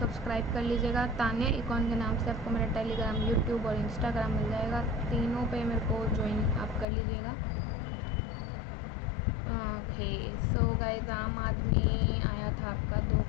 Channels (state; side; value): drops out; right; at 6.9 s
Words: कर लीजिएगा। तान्या इकॉन के नाम से आपको मेरा टेलीग्राम, यूट्यूब और इंस्टाग्राम मिल जाएगा। तीनों पे मेरे को ज्वाइन आप कर लीजिएगा। ओके, सो गाइस, आम आदमी आया था आपका 2